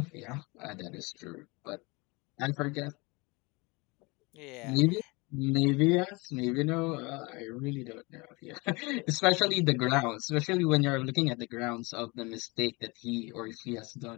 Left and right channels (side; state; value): right; quieter; 26.2 dB